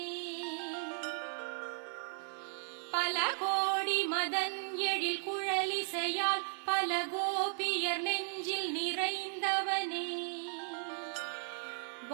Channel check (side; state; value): left; silent; 54 dB below the other